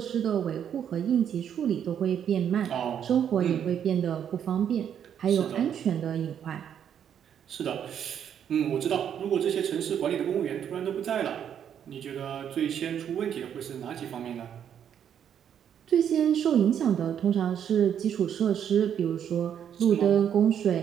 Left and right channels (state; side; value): quieter; left; 8.9 dB